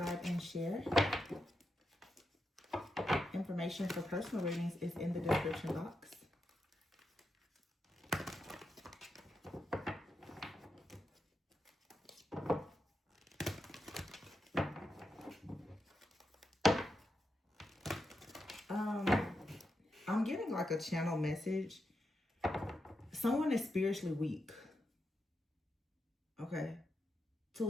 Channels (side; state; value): both; normal; correlation 0.86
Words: and share. Information for personal readings is in the description box. I'm getting like a channel message. Someone is spiritually weak. Okay.